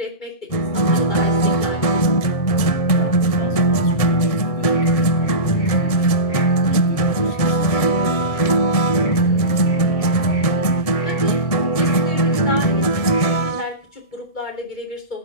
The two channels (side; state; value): right; late; 1.7 ms